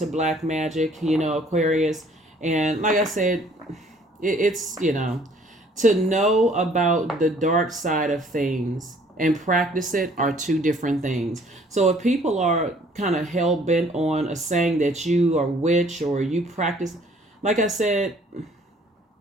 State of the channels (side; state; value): both; normal; correlation 0.58